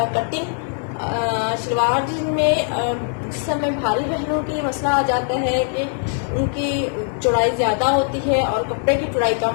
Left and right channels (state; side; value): silent; right; 56 dB below the other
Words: कटिंग। शलवार जिसमें जिस समय भारी बहनों की मसला आ जाता है कि उनकी चौड़ाई ज़्यादा होती है और कपड़े की चौड़ाई